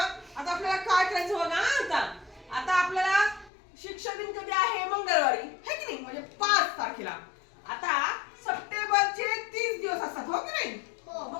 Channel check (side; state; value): right; drops out; at 3.5 s